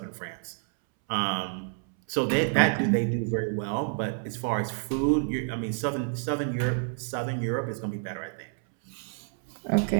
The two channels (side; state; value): left; silent; 59 dB below the other